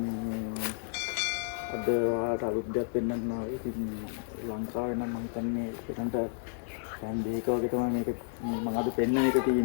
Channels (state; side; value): silent; right; digital silence